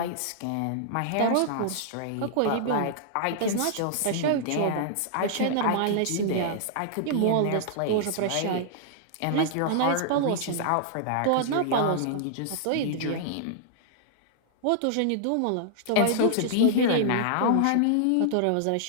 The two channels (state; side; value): different; both; correlation -0.01